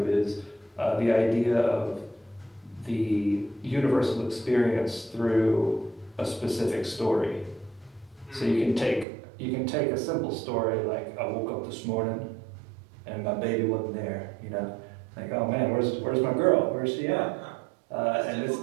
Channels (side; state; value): left; drops out; at 9.1 s